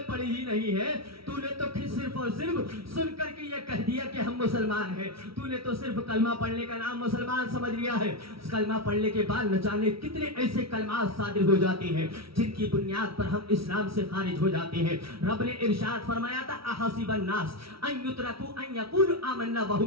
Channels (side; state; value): left; late; 0.75 ms